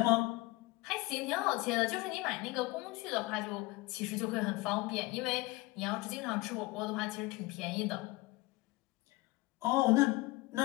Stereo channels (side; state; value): right; quieter; 22.0 dB